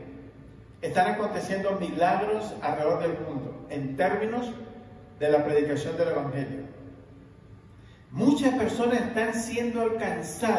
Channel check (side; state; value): both; identical; correlation 1.00